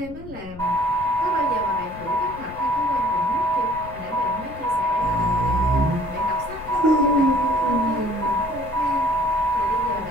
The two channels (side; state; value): left; noise; rumble, 16 dB below the sound